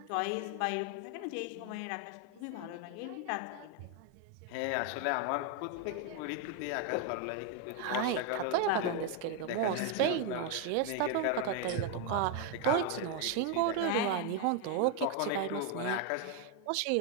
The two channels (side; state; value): both; different; correlation 0.01